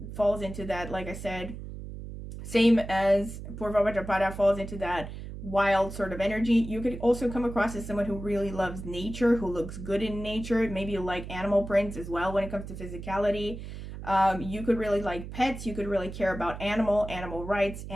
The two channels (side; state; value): right; noise; hum, 10 dB below the sound